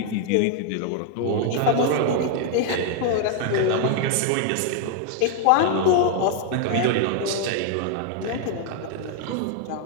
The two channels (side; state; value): both; different; correlation 0.00